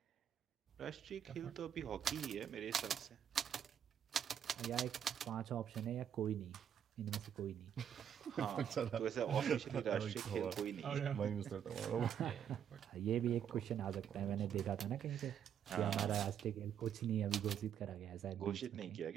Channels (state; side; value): quieter; left; 8.9 dB